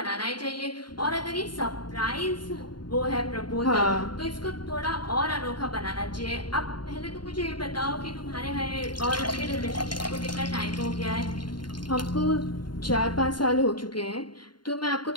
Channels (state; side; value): late; right; 0.71 ms